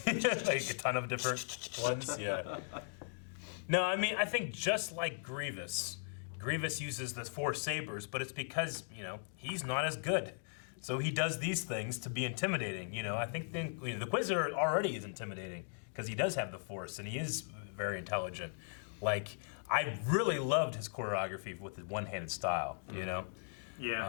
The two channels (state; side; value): silent; right; digital silence